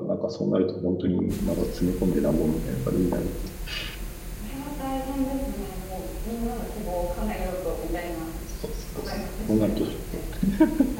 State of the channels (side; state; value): both; identical; correlation 1.00